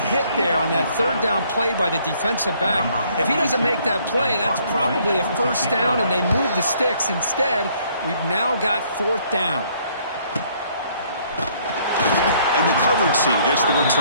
hit there on that third down play by the defensive back. If he doesn't make that play, that's probably a first down, and they move the sticks. Instead, we've now got fourth down. And the coverage team gets the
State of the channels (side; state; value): both; inverted; correlation -0.64